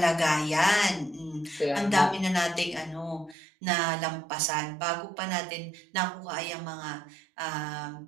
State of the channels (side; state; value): left; drops out; at 3.4 s